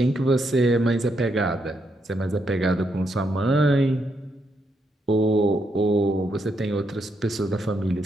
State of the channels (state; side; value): normal; both; correlation 0.79